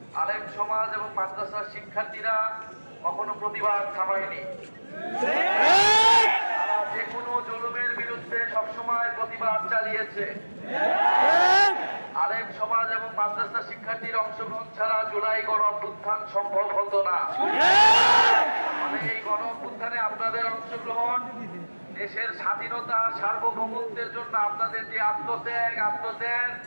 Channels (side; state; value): both; inverted; correlation -1.00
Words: আলেম সমাজ এবং মাদ্রাসার শিক্ষার্থীরা কখনো প্রতিবাদ থামায়নি। তারা যে কোনো জুলুমের বিরুদ্ধে সবসময় প্রতিবাদ চালিয়েছে। আলেম সমাজ এবং মাদ্রাসা শিক্ষার্থীর অংশগ্রহণ ছাড়া জুলাই গণ অভ্যুত্থান সম্ভব হতো না। এই গণ অভ্যুত্থানে আপনাদের অংশগ্রহণ, দেশের স্বাধীনতা সার্বভৌমত্বের জন্য আপনাদের যে